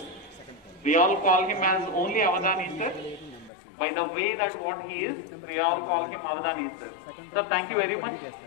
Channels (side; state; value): right; drops out; at 3.5 s